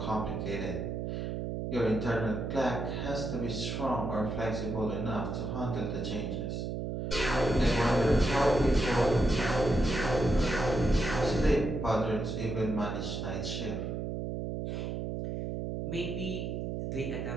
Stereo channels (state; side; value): noise; right; hum, 3 dB below the sound